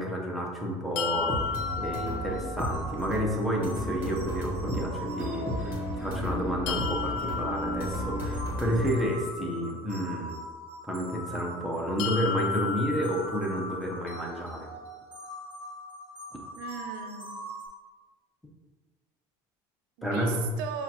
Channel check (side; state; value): both; normal; correlation 0.43